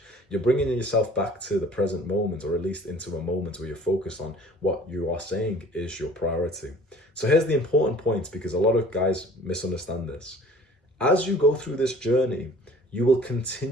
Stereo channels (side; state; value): both; normal; correlation 0.50